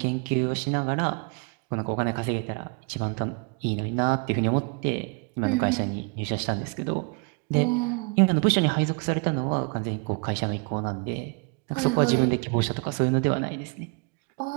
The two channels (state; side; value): quieter; left; 32.5 dB